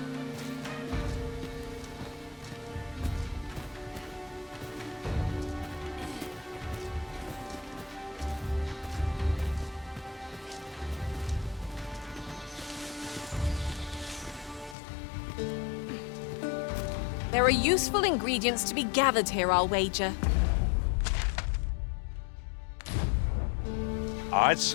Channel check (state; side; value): drops out; right; at 14.8 s